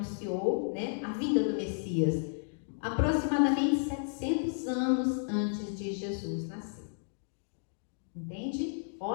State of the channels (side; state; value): right; silent; digital silence